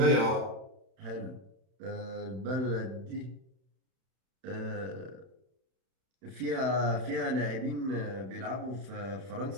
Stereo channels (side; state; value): left; late; 31 ms